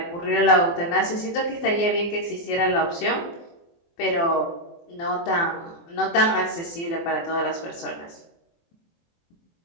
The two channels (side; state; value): right; late; 24 ms